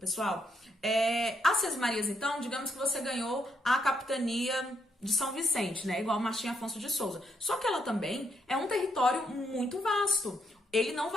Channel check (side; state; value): both; normal; correlation 0.77